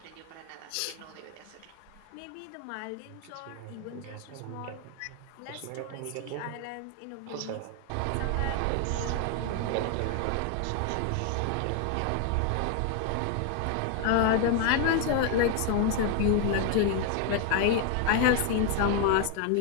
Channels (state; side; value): different; both; correlation 0.01